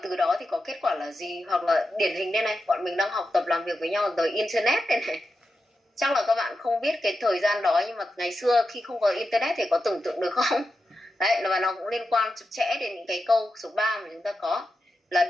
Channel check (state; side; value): normal; both; correlation 0.89